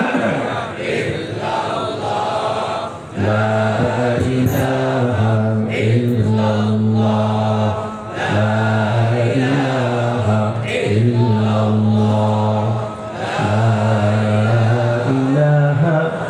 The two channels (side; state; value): both; identical; correlation 1.00